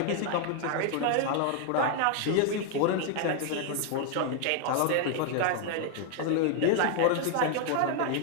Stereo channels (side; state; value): both; different; correlation 0.00